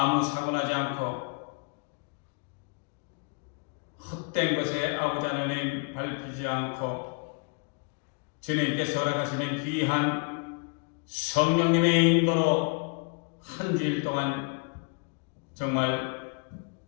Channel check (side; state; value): right; quieter; 36.9 dB